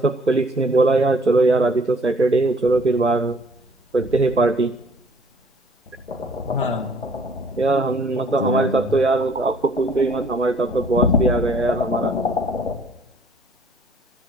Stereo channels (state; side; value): normal; both; correlation 0.58